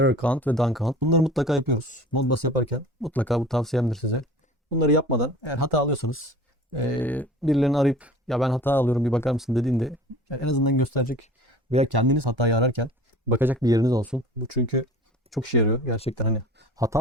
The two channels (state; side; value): normal; both; correlation 0.43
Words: count ve done count. Bunları mutlaka yapıyoruz. Modbus yaparken mutlaka, bu tavsiyemdir size. Bunları yapmadan eğer hata alıyorsanız birilerini arayıp ya ben hata alıyorum bir bakar mısın dediğinde yani en azından gösterecek veya kendiniz hatayı ararken bakacak bir yeriniz olsun. Bu çünkü çok işe yarıyor gerçekten, hani